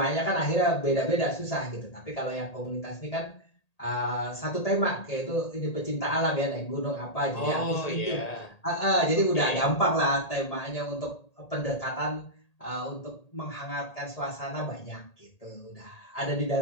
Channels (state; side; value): late; right; 1.8 ms